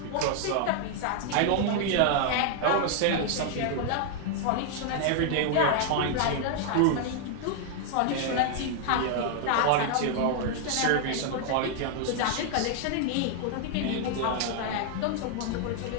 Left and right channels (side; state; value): both; different; correlation 0.00